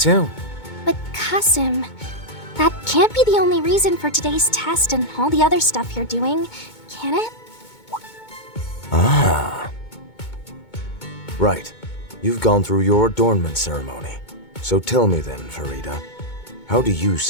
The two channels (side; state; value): right; late; 2.2 ms